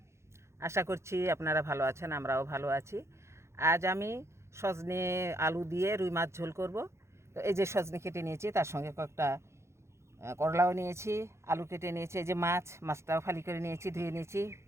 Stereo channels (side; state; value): left; late; 0.13 ms